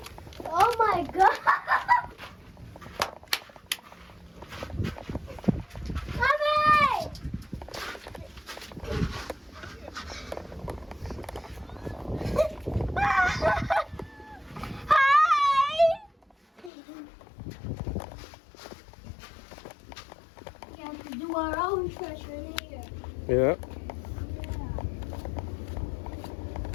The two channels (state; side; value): drops out; right; at 16.7 s